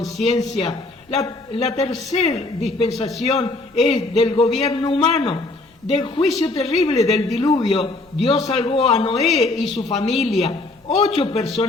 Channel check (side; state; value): right; quieter; 3.0 dB